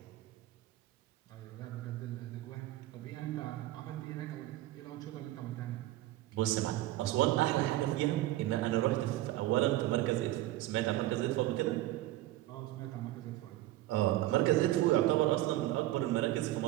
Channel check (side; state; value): left; quieter; 15.7 dB